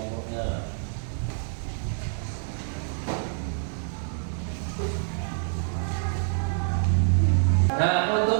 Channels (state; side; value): silent; left; digital silence